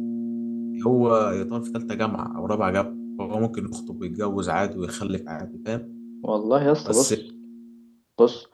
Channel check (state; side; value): identical; both; correlation 1.00